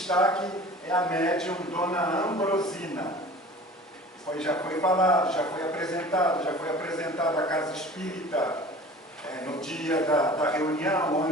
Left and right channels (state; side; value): normal; both; correlation 0.42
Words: é a médium Dona Ambrosina. Já foi falado, já foi apresentado a Casa Espírita no dia da reunião, o